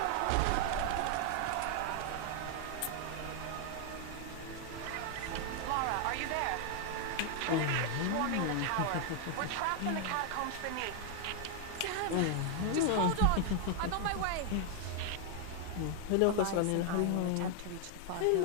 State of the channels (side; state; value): both; different; correlation 0.00